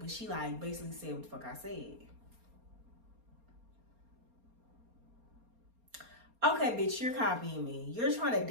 she like basically said what the fuck I said. Okay, bitch, you're copying me. You're trying to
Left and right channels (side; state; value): left; late; 4.3 ms